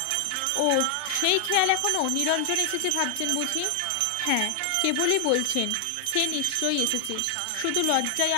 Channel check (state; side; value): different; both; correlation 0.00